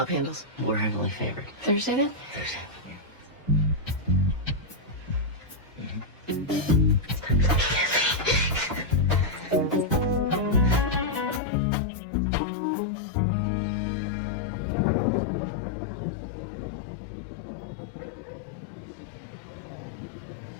handles. We're heavily favored. Thursday then? Thursday, yeah.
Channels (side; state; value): right; drops out; at 11.4 s